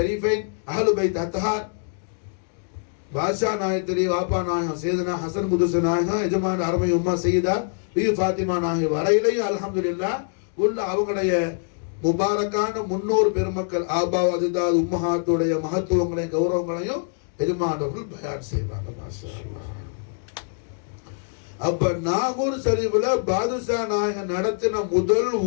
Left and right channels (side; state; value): right; silent; digital silence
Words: அஹ்லு பைத் அத்ஹார் பாஷா நாயத்திரி வாப்பா நாயகம் சேதனா ஹசன் குதுச நாயகம் எஜமான அருமை உம்மா செய்தா ஃபாத்திமா நாயகம் வரையிலையும் அல்ஹம்துலில்லாஹ் உள்ள அவங்களுடைய முபாரக்கான முன்னோர் பெருமக்கள் ஆபா அஜிதாத் உம்மஹாத்துடைய மகத்துவங்களையும் கௌரவங்களையும் எஜமானவர்கள் பயான் செய்வாங்க. மாஷா அல்லாஹ். அப்ப நாகூர் ஷரீஃப்ல பாதுஷா நாயகன் நடத்தின முதல்